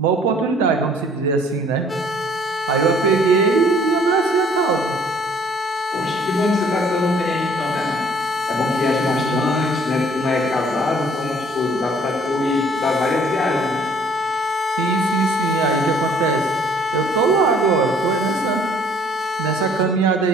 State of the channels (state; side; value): normal; both; correlation 0.57